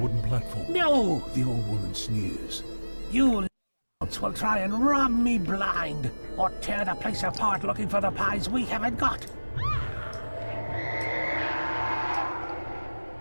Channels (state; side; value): inverted; both; correlation -1.00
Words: wooden platform. No! The old woman sneers. You will try and rob me blind, or tear the place apart looking for the pies we haven't got.